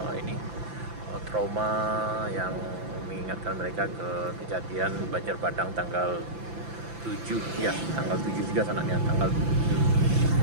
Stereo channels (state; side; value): late; left; 5.9 ms